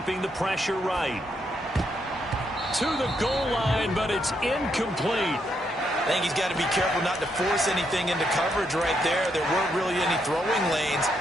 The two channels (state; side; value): normal; both; correlation 0.78